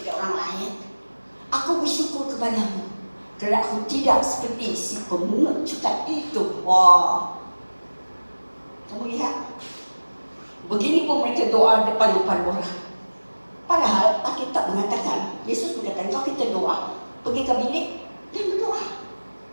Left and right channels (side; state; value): both; inverted; correlation -1.00